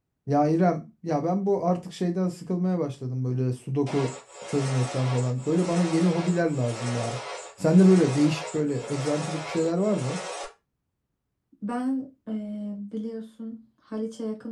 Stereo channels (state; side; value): identical; both; correlation 1.00